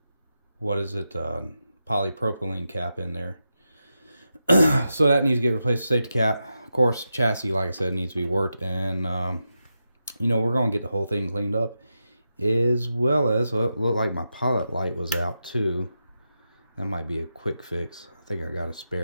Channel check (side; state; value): both; inverted; correlation -0.88